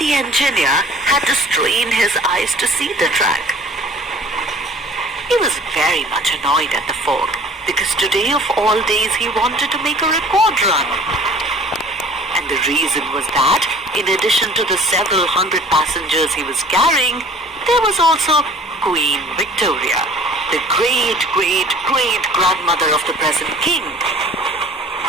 engineer had to strain his eyes to see the track. He was very much annoyed at the fog, because today of all days he wanted to make a record run. And the reason was that, in addition to the several hundred passengers he was carrying, there was also Queen Victoria, the great-great-great-grandmother of the present king.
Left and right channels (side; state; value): both; normal; correlation 0.49